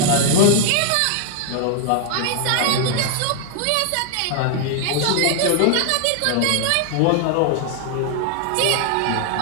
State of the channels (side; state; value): both; different; correlation 0.00